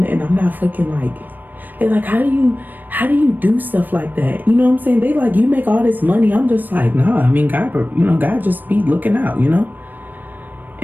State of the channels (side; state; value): left; late; 0.089 ms